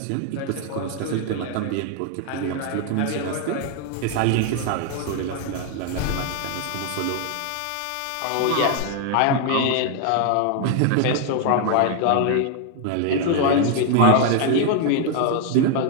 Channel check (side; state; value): both; different; correlation 0.00